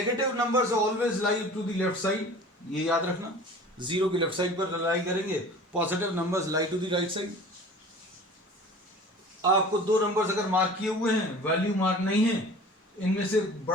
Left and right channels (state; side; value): normal; both; correlation 0.42